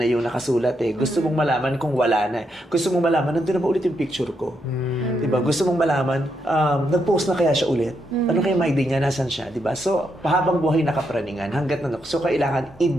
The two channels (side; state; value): both; normal; correlation 0.80